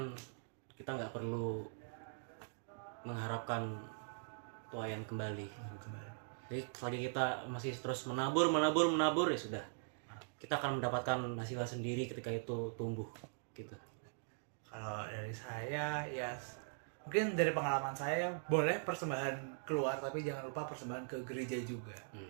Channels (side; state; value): left; silent; digital silence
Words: kita nggak perlu mengharapkan tuayan kembali. Jadi selagi kita masih terus menabur ya sudah. Kita akan mendapatkan hasilnya sendiri ketika itu tumbuh gitu. Kalau dari saya ya mungkin dari pengalaman saya boleh persembahan keluar, tapi jangan lupa persembahan ke gereja juga.